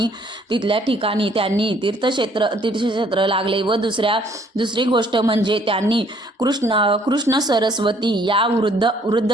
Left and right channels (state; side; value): normal; both; correlation 0.62